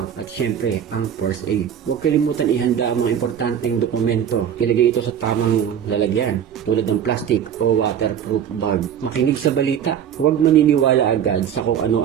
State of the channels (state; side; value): quieter; left; 9.0 dB